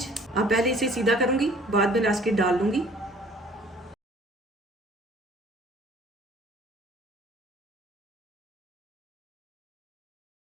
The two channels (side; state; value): both; normal; correlation 0.53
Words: अब पहले इसे सीधा करूँगी, बाद में रास्केट डाल लूँगी।